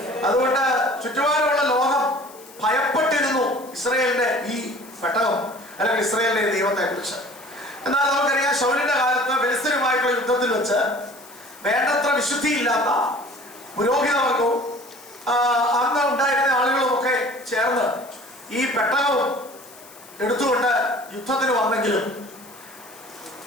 അതുകൊണ്ട് ചുറ്റുപാടുമുള്ള ലോകം ഭയപ്പെട്ടിരുന്നു ഇസ്രായേലിന്റെ ഈ പെട്ടകം അല്ലെങ്കിൽ ഇസ്രായേലിന്റെ ദൈവത്തെ കുറിച്ച്. എന്നാൽ നമുക്കറിയാം, ശൗലിന്റെ കാലത്ത് ഫെലിസ്ത്യരുമായിട്ടുള്ള യുദ്ധത്തിൽ വെച്ച് വേണ്ടത്ര വിശുദ്ധിയില്ലാത്ത പുരോഹിതവർഗവും അന്ന് ഉണ്ടായിരുന്ന ആളുകളും ഒക്കെ ചേർന്ന് ഈ പെട്ടകവും എടുത്തുകൊണ്ട് യുദ്ധത്തിന് വന്നെങ്കിലും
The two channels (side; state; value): left; noise; hiss, 21 dB below the sound